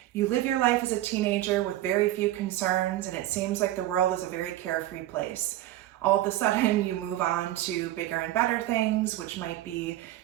You live your life as a teenager with very few concerns, and it seems like the world is a very carefree place. All of a sudden, you move on to bigger and better things, which might be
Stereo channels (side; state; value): left; quieter; 14.6 dB